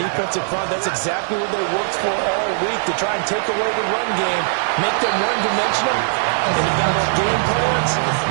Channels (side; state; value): left; silent; 66 dB below the other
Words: front. That's exactly what they worked for all week, to try and take away the run game, make them one-dimensional. And the balanced game plans,